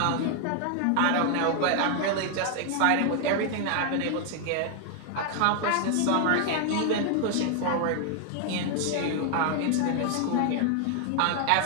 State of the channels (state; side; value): different; both; correlation 0.00